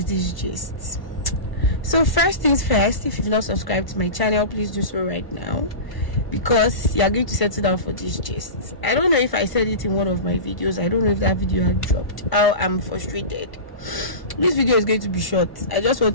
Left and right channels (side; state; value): right; late; 1.0 ms